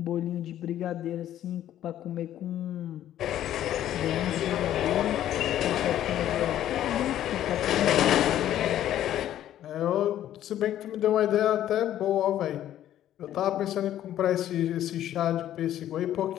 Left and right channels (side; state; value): right; quieter; 12.0 dB